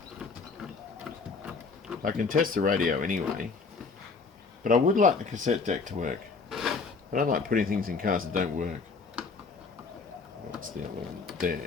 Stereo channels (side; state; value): right; quieter; 4.6 dB